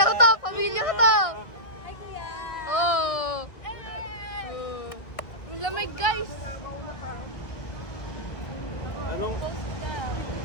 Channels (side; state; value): right; late; 1.6 ms